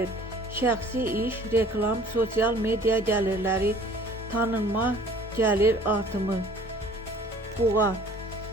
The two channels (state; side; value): normal; both; correlation 0.52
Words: Şəxsi iş, reklam, sosial media gəlirləri, tanınma, gəlir artımı. Buğa,